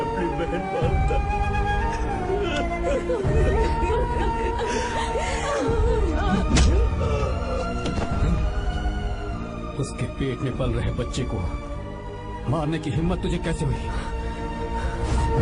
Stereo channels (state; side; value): identical; both; correlation 1.00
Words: बहन मानता। उसके पेट में पल रहे बच्चे को मारने की हिम्मत तुझे कैसे हुई?